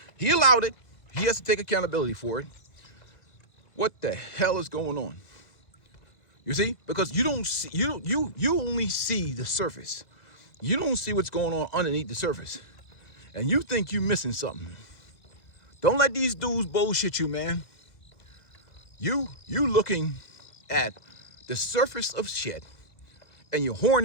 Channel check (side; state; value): right; late; 2.0 ms